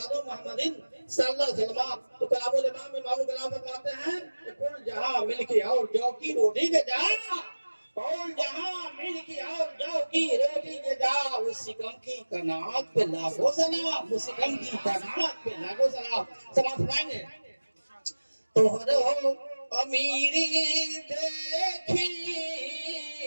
मोहम्मदीन सल्लल्लाहु अलैहि वसल्लम तो कलामुल इमाम में मामू कलाम फरमाते हैं कि कुल जहां मिलके और जौ की रोटी के जा और जहां मिलके और जौ की रोटी के जा उस सिकम की कनात पे लागो सलाम उस सिकम की कनात पे लागो सलाम समाज फरमाएंगे तोहरो अमीरी देखी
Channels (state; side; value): inverted; both; correlation -1.00